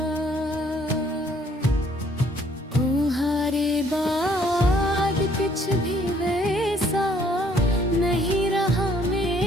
तुम्हारे बाद कुछ भी वैसा नहीं रहा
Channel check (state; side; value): normal; both; correlation 0.63